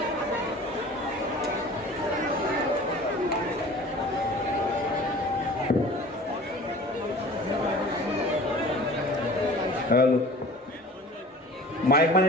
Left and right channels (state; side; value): normal; both; correlation 0.43